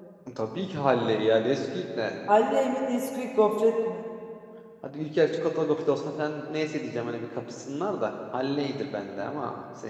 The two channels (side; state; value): both; identical; correlation 1.00